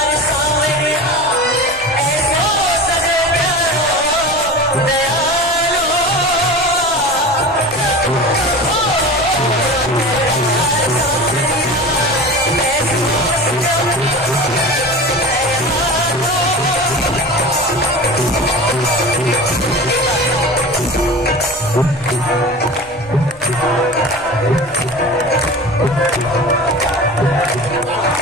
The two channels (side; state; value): right; noise; rumble, 23 dB below the sound